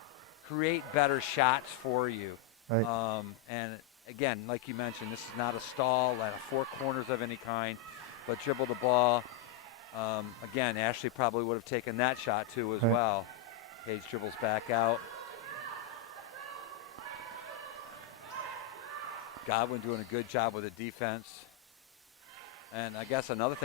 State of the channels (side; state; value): right; quieter; 9.4 dB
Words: better shots for you. Right. And again, like you mentioned, this is not a stall at four corners of any kind, but dribble the ball. Again, Ashley probably would have taken that shot too as Right. well. Paige dribbles back out. Godwin doing a good job with the defense. And I guess another